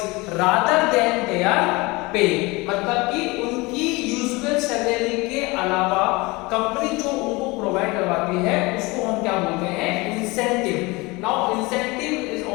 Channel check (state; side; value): quieter; right; 24.0 dB